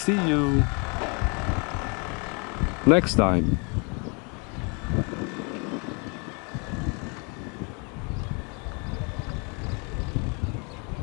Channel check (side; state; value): right; quieter; 34.0 dB